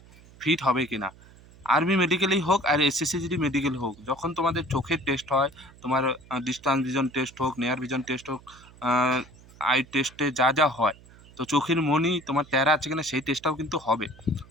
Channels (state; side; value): noise; right; hum, 23 dB below the sound